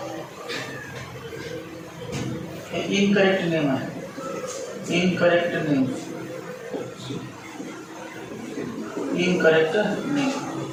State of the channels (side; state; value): both; identical; correlation 1.00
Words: हे इनकरेक्ट नेम आहे. Incorrect name.